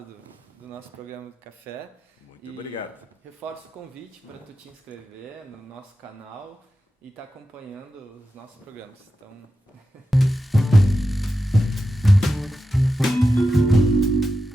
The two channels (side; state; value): both; normal; correlation 0.90